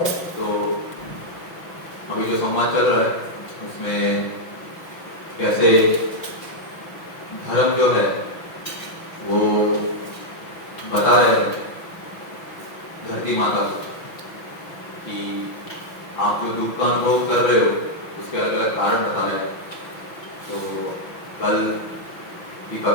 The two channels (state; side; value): late; right; 5.9 ms